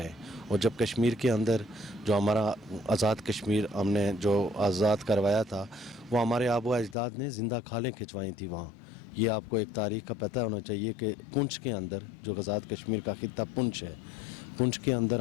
हैं। और जब कश्मीर के अंदर जो हमारा आज़ाद कश्मीर हमने जो आज़ाद करवाया था, वो हमारे आबो अजदाद ने ज़िंदा खालें खिंचवाई थी वहाँ। ये आपको एक तारीख़ का पता होना चाहिए कि पुंछ के अंदर जो आज़ाद कश्मीर का खित्ता पुंछ है, पुंछ के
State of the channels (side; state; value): right; drops out; at 7.0 s